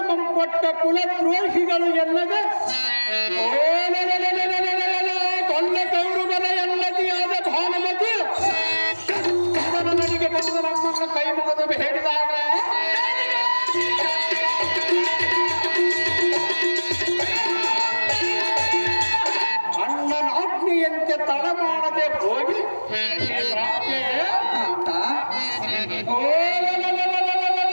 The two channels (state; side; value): inverted; both; correlation -1.00